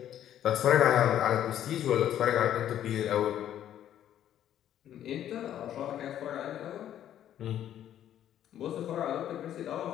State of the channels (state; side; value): quieter; right; 11.0 dB